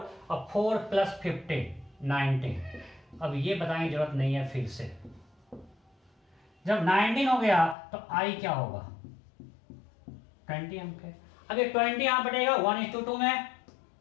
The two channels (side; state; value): right; drops out; at 7.8 s